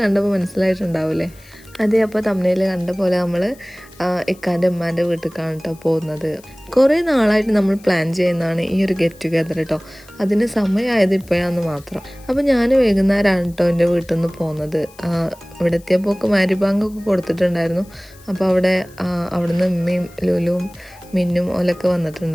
കണ്ടപ്പോൾ മനസ്സിലായിട്ടുണ്ടാവില്ലേ? അതെ, അപ്പോൾ തമ്മിൽ കണ്ട പോലെ നമ്മൾ ഇക്കാൻ്റെ ഉമ്മാൻ്റെ വീട്ടിലേക്കാണ് കേട്ടോ പോകുന്നത്. കുറേ നാളായിട്ട് നമ്മൾ പ്ലാൻ ചെയ്യുന്നതാണ് ഈ ഒരു ഗെറ്റ് ടുഗെദർ കേട്ടോ. അതിന് സമയമായത് ഇപ്പോഴാന്ന് മാത്രം. അപ്പോൾ ഞാൻ വൈകുന്നേരമാണ് കേട്ടോ എൻ്റെ വീട്ടിൽ നിന്ന് പോകുന്നത്. ഇവിടെ എത്തിയപ്പോൾ മാരിബാങ്കൊക്കെ കൊടുത്തിട്ടുണ്ടായിരുന്നു. അപ്പോൾ അവിടുന്ന് ഉമ്മയും ലുലുവും മിന്നും ഓലൊക്കെ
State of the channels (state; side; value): noise; left; hiss, 26 dB below the sound